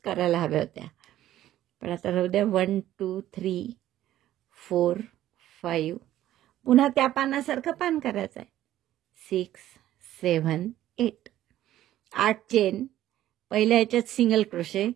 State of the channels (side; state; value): left; quieter; 13.3 dB